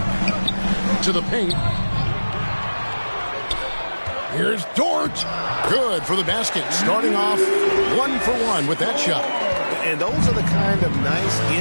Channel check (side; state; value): both; inverted; correlation -1.00